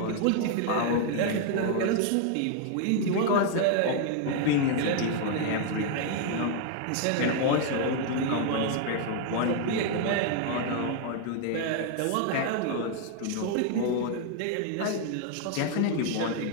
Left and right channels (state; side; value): different; both; correlation 0.00